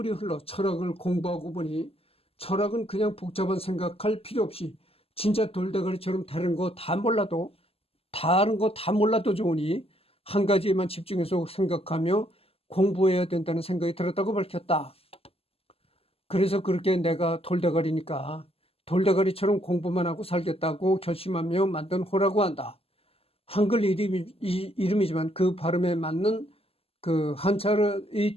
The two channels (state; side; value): late; right; 0.28 ms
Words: 흘러 철학을 공부하고 보니 철학은 그냥 복잡한 생각할 필요 없이 진짜 돌대가리처럼 다른 거 다 몰라도 좋으니 한 가지에만 집중해서 생각하며 공부해야 된다는 생각이 들었다고 밝혔다. 그래서 그렇게 내가 돌대가리니까 돌대가리처럼 공부만 하고 살겠다고 결심하며 만든 호라고 한다. 한글 이름이지만 그 발음에 맞는 그 한자의